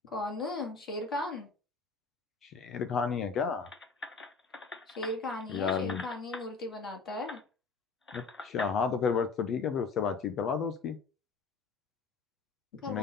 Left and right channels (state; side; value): quieter; right; 4.7 dB